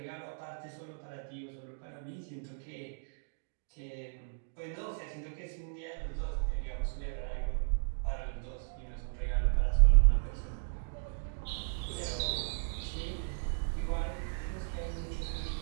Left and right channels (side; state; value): left; silent; digital silence